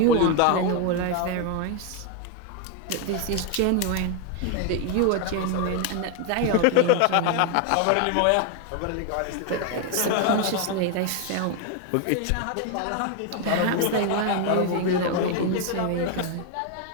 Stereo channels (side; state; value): both; different; correlation 0.01